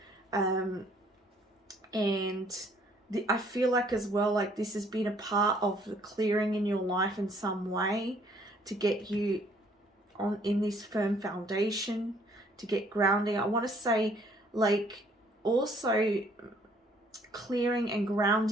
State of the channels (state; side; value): normal; both; correlation 0.62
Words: I feel like as well, like this has been a part of the clearing in your life in some way to get you in this firm foundation, to get grounding. I want to say like also clearing and